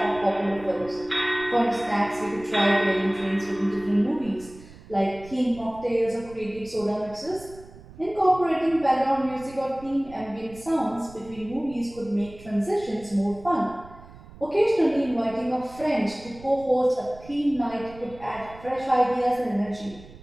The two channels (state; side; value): noise; right; rumble, 19 dB below the sound